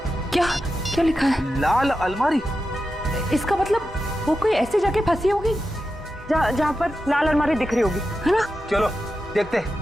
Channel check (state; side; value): normal; both; correlation 0.90